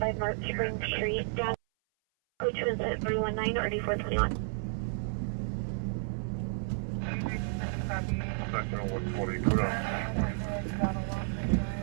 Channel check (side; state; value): left; silent; 57 dB below the other